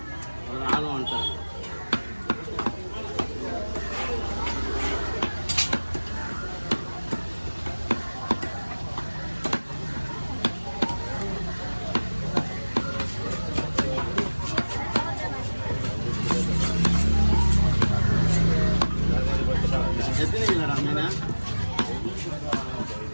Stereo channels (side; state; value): both; inverted; correlation -1.00